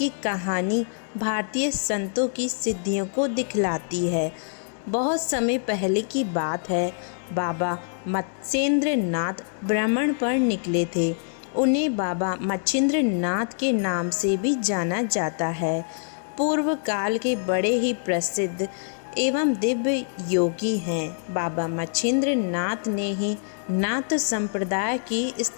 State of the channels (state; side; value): silent; right; digital silence